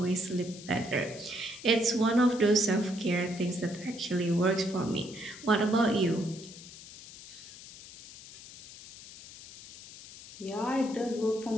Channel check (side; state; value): left; noise; hiss, 16 dB below the sound